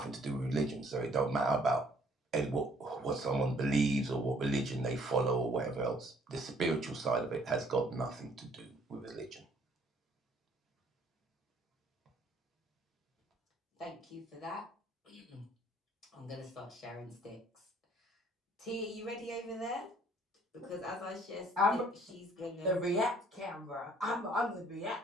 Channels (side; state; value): both; normal; correlation 0.62